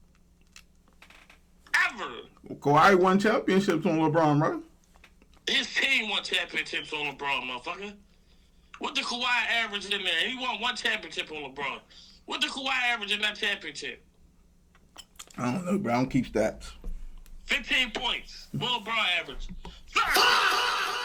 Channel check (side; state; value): both; identical; correlation 1.00